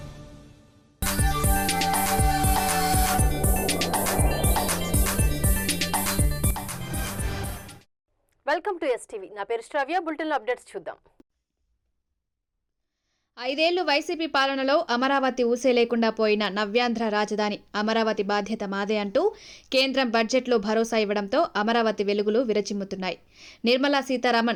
to STV. నా పేరు శ్రావ్య. బులెటిన్లో అప్డేట్స్ చూద్దాం. 5 ఏళ్లు వైసీపీ పాలనలో అమరావతి ఊసే లేకుండా పోయిన నవ్యాంధ్ర రాజధాని అమరావతి బాధ్యత మాదే అంటూ కేంద్రం బడ్జెట్లో భరోసా ఇవ్వడంతో అమరావతి వెలుగులు విరచిమ్ముతున్నాయి. నిర్మలా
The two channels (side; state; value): both; identical; correlation 1.00